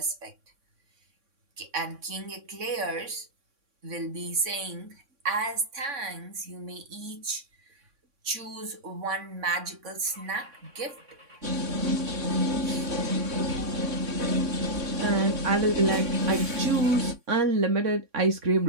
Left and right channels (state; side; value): late; left; 3.6 ms